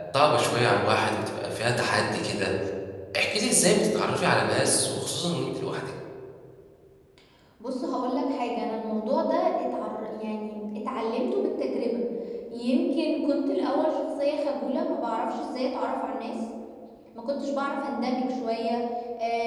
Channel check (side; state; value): both; identical; correlation 1.00